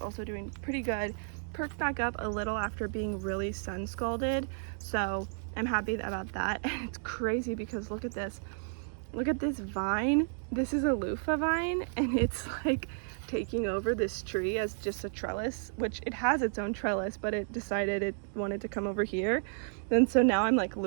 doing pretty good. Perked back up a little after being really sun scalded, so I'm happy about that. And it's crazy because look at this vine. This is a loofah vine, and it's like taking over this tree as just a trellis, which it has its own trellis, but it decided it wanted to come over here. And so now I'm like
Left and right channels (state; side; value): silent; left; digital silence